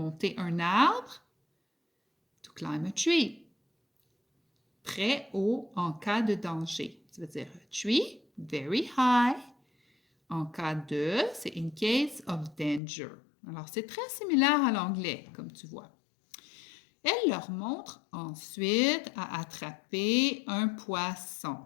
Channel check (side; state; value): right; drops out; at 12.8 s